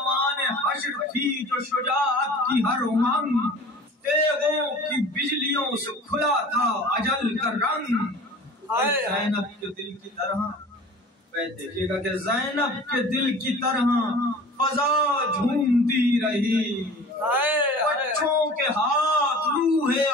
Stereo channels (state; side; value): normal; both; correlation 0.42